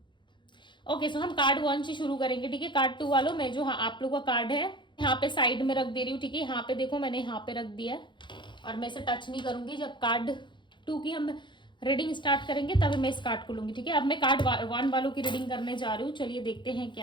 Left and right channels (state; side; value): late; right; 0.23 ms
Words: ओके, सो हम कार्ड 1 से शुरू करेंगे। ठीक है, कार्ड 2 वालों में जो आप लोगों का कार्ड है यहाँ पे साइड में रख दे रही हूँ। ठीक है, यहाँ पे देखो मैंने यहाँ पे रख दिया है और मैं इसे टच नहीं करूंगी। जब कार्ड 2 की हम रीडिंग स्टार्ट करेंगे तब मैं इस कार्ड को लूंगी। ठीक है, अब मैं कार्ड 1 वालों की रीडिंग करने जा रही हूँ। चलिए देखते हैं